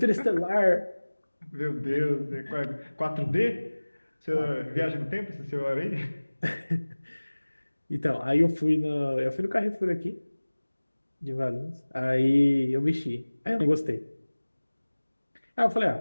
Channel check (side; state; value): both; inverted; correlation -1.00